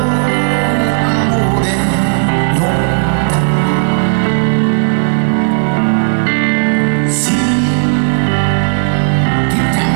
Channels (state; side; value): silent; left; digital silence